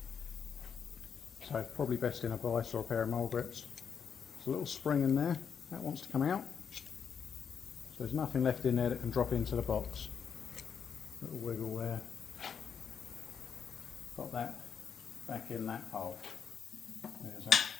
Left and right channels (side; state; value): right; quieter; 7.1 dB